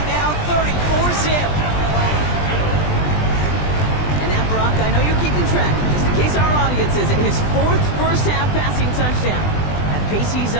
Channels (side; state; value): right; late; 20 ms